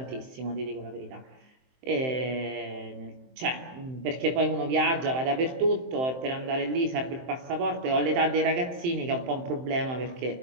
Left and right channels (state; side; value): late; left; 23 ms